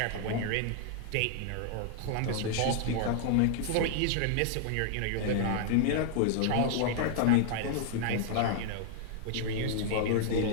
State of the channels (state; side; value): different; both; correlation -0.01